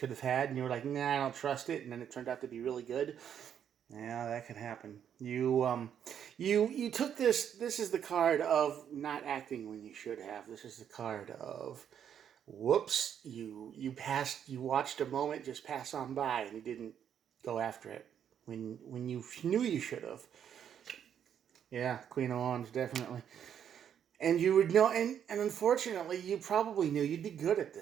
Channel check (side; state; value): left; quieter; 8.9 dB